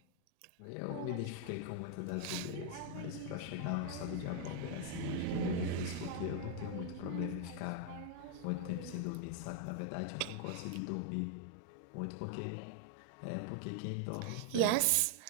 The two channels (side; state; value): both; different; correlation 0.00